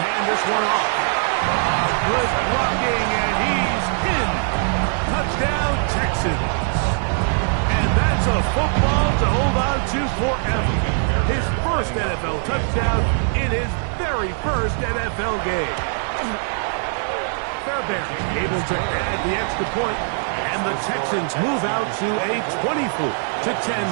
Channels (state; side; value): silent; left; 58 dB below the other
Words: hand this one off. Good blocking, and he's in. Touchdown, Texans. And that's a football to hold on to forever. His first NFL touchdown in his very first NFL game. Fairbairn able to add the extra point, and the Texans move out to a